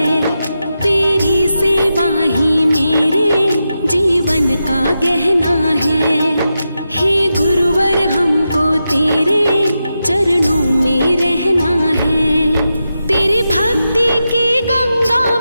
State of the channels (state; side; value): inverted; both; correlation -0.89